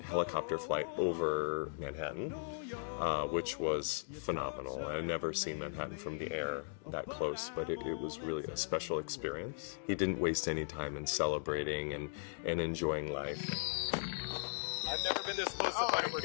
helicopter flight over Manhattan, which was phenomenal. I had never seen Manhattan from the air that close, but it was really a special experience. He didn't waste any time in celebrating and enjoying life. I've never been this close to Oh my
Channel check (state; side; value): silent; right; digital silence